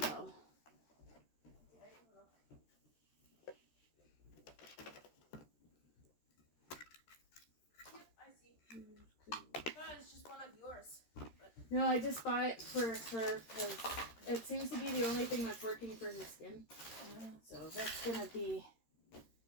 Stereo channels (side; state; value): right; late; 13 ms